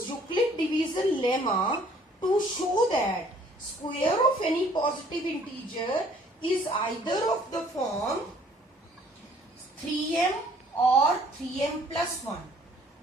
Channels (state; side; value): normal; both; correlation 0.58